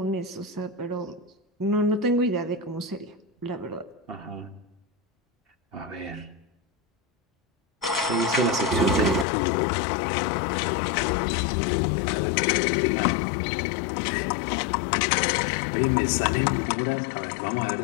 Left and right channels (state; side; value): drops out; right; at 9.2 s